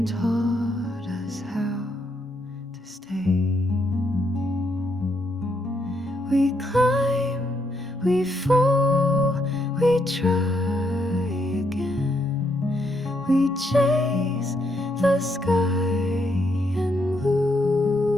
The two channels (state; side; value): normal; both; correlation 0.76